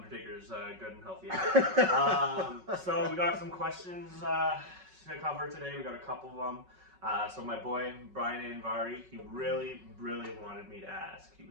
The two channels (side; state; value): left; late; 5.4 ms